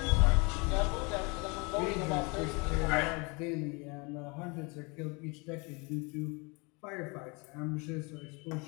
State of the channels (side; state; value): right; quieter; 29.6 dB